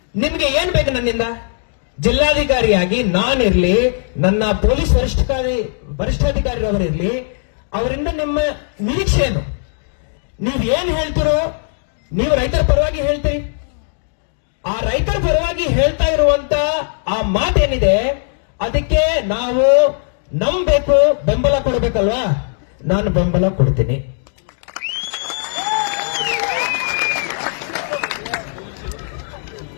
ನಿಮ್ಗೆ ಏನ್ ಬೇಕು ನನ್ನಿಂದ? ಜಿಲ್ಲಾಧಿಕಾರಿಯಾಗಿ ನಾನಿರ್ಲಿ, ನನ್ನ ಪೊಲೀಸ್ ವರಿಷ್ಠಾಧಿಕಾರಿರವರಿರ್ಲಿ, ಅವರಿಂದ ನಿಮ್ಮ ನಿರೀಕ್ಷೆ ಏನು? ನೀವ್ ಏನ್ ಹೇಳ್ತಿರೋ, ನೀವು ರೈತರ ಪರವಾಗಿ ಹೇಳ್ತೀರಿ. ಆ ರೈತರ ಪರವಾಗಿ ಹೇಳ್ತಾ ಇರುವಂತ ಆ ಮಾತೇನಿದೆ, ಅದಕ್ಕೆ ನಾವು ನಂಬಬೇಕು, ಬೆಂಬಲ ಕೊಡಬೇಕಲ್ವಾ? ನಾನು ಬೆಂಬಲ ಕೊಡ್ತೀನಿ.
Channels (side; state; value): right; silent; digital silence